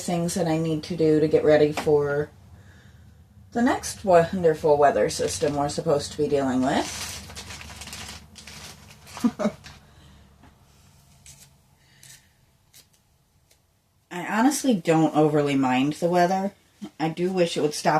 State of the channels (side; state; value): both; identical; correlation 1.00